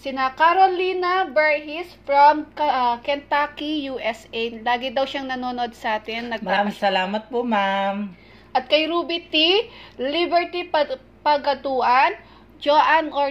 Sina Carolina Berhis from Kentucky, USA. Lagi daw siyang nanonood sa atin. Maraming salamat po, ma'am. At kay Ruby T, Liberty Pagatuan, Joanne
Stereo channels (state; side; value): identical; both; correlation 1.00